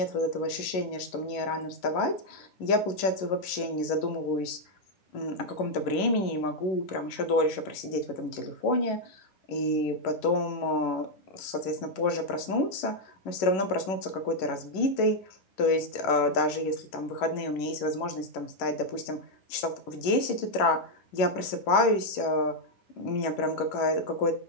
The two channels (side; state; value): right; late; 11 ms